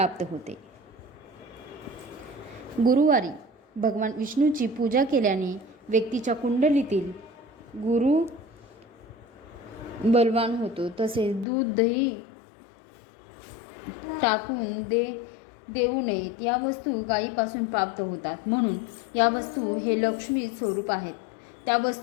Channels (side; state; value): right; drops out; at 11.5 s